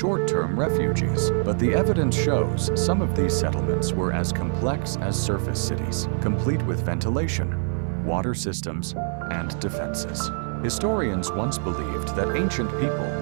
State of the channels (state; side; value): silent; left; 62 dB below the other